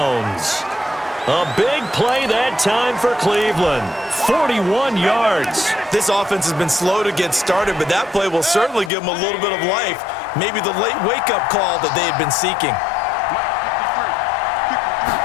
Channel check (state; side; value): drops out; right; at 8.9 s